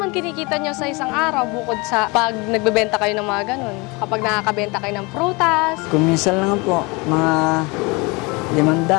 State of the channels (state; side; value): quieter; right; 26.9 dB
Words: kinikita nyo sa isang araw bukod sa pag nagbebenta kayo ng mga ganun? Kapag nakakabenta kayo ng prutas? Kung minsan lang po, mga